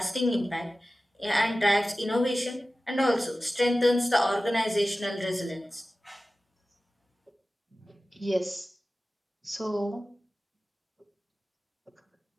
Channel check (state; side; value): normal; both; correlation 0.96